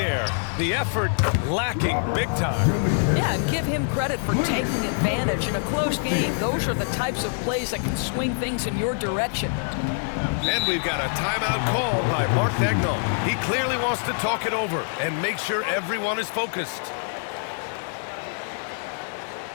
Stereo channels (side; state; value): right; silent; digital silence